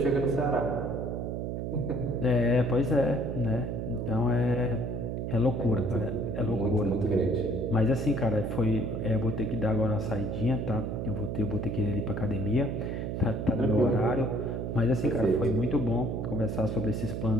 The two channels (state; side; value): noise; right; hum, 3 dB below the sound